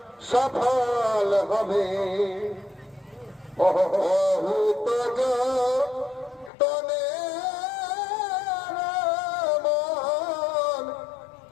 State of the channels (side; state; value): right; drops out; at 6.5 s